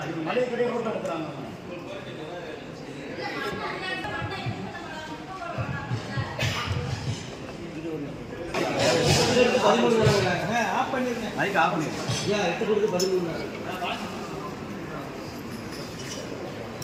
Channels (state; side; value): identical; both; correlation 1.00